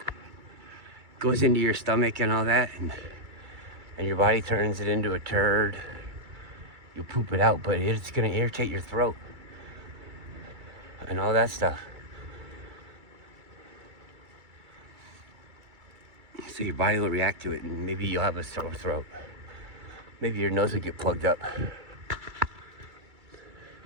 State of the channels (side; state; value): left; late; 2.3 ms